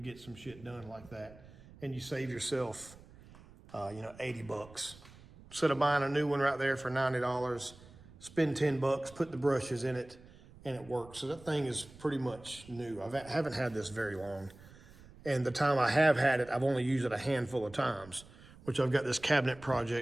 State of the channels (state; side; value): noise; right; rumble, 21 dB below the sound